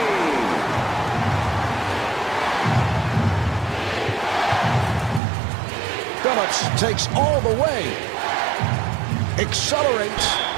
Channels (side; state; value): left; drops out; at 5.2 s